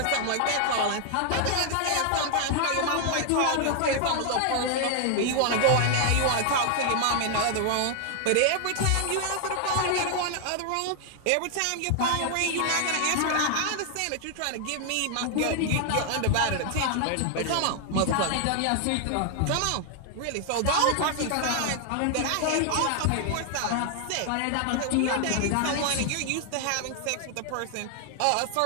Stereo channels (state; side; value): different; both; correlation 0.00